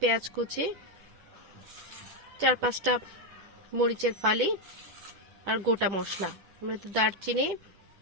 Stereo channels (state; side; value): late; left; 10 ms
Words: পেঁয়াজ কুচি, 4-5টা মরিচের ফালি, আর গোটা মশলা, দারচিনি,